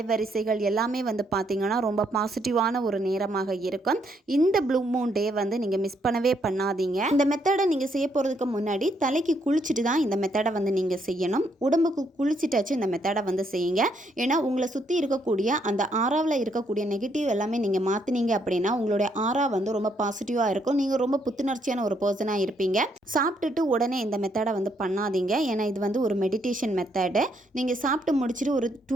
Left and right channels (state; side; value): normal; both; correlation 0.73